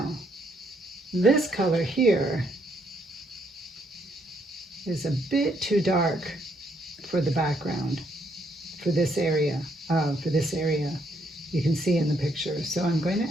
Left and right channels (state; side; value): normal; both; correlation 0.72